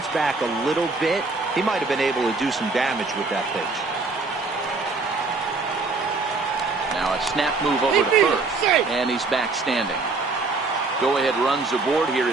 back a little bit, he might have been able to do some damage with that pitch. Now a snap move over to first, and he's back standing. Go-ahead runs aboard here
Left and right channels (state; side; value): quieter; left; 3.8 dB